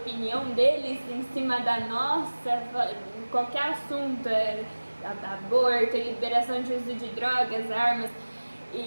deles em cima da nossa, qualquer assunto, aborto, liberação de uso de drogas, armas,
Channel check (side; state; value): both; inverted; correlation -1.00